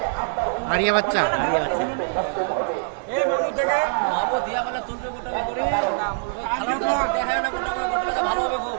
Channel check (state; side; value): silent; left; digital silence